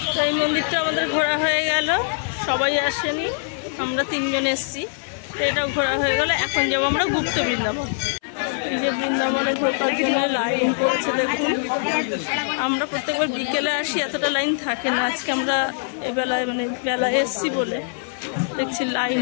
এই মন্দিরটা আমাদের ঘোরা হয়ে গেল, সবাই আসেনি, আমরা তিনজন এসছি। এটাও ঘোরা হয়ে গেল। এখন যাবো আমরা গুপ্ত বৃন্দাবন। এই যে বৃন্দাবনে ঢোকার জন্য লাইন পড়ছে দেখুন। আমরা প্রত্যেকবার বিকেলে আসি, এতটা লাইন থাকে না। আজকে আমরা এই বেলায় বেলায় এসছি বলে দেখছি লাইন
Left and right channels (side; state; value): right; silent; 64 dB below the other